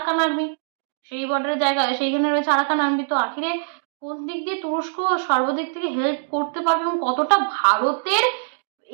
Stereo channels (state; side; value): silent; left; digital silence